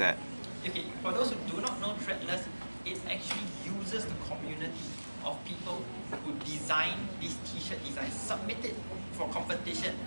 Okay, for those who do not know Threadless, it actually uses the community of people who design these t-shirt designs, submit it for competition.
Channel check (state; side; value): inverted; both; correlation -1.00